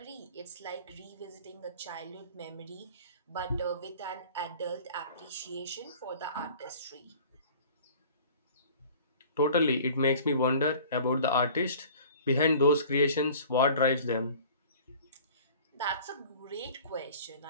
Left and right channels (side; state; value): both; inverted; correlation -0.45